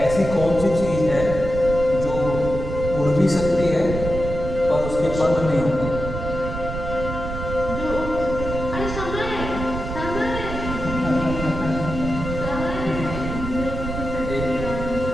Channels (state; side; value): noise; right; rumble, 6 dB below the sound